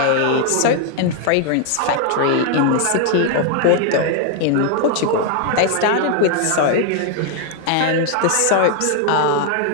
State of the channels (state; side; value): different; both; correlation 0.00